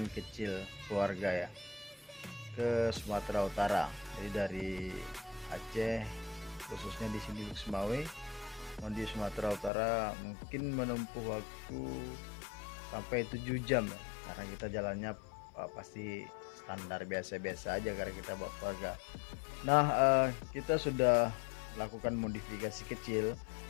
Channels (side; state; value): right; drops out; at 9.7 s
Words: kecil keluarga ya ke Sumatera Utara. Jadi dari Aceh, khususnya di sini Semawe, mau di Sumatera Utara mungkin menempuh waktu sampai 7 jam ya. Karena kita jalannya pasti standar biasa-biasa aja karena kita bawa keluarga. Nah, kita sudah lakukan modifikasi kecil